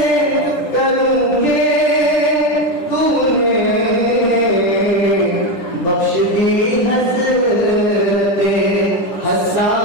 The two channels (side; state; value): right; late; 10 ms